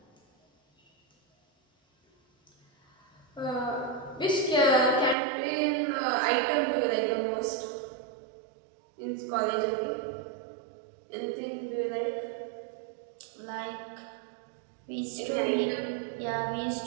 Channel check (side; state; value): left; drops out; at 5.2 s